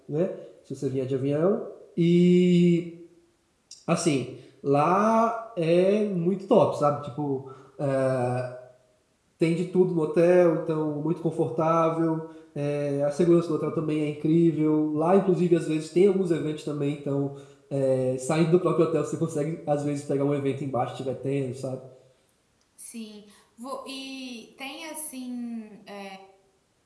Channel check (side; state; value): both; identical; correlation 1.00